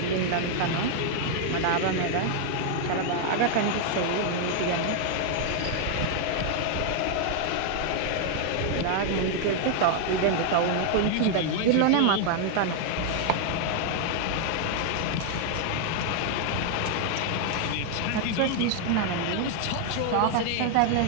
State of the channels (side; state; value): both; different; correlation 0.00